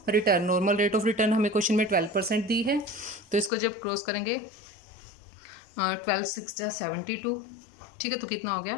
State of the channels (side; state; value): right; drops out; at 3.5 s